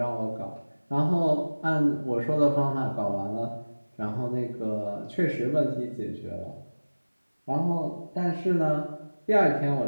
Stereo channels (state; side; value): inverted; both; correlation -1.00